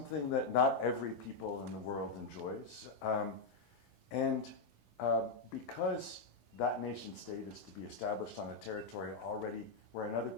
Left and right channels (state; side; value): quieter; right; 3.9 dB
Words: that not every people in the world enjoys. And because that nation state is to be established on a territory already where another